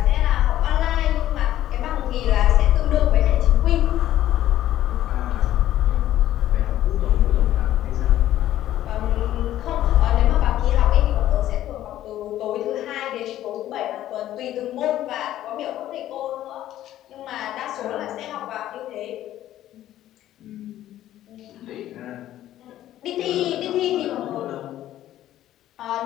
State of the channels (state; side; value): quieter; right; 13.1 dB